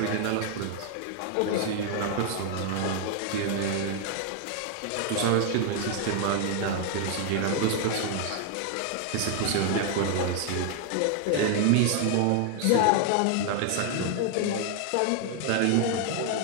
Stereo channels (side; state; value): both; different; correlation 0.00